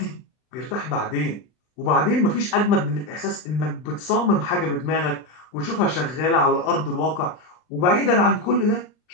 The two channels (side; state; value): right; late; 39 ms